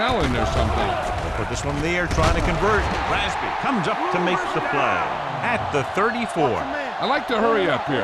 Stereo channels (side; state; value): both; identical; correlation 1.00